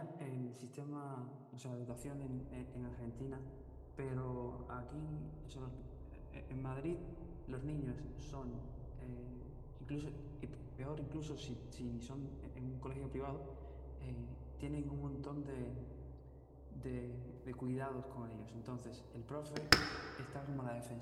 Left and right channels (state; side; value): identical; both; correlation 1.00